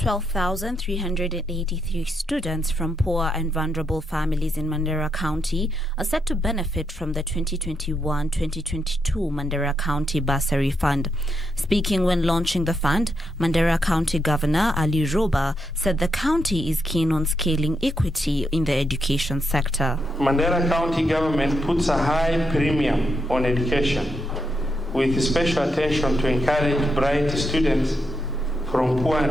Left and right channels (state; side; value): normal; both; correlation 0.81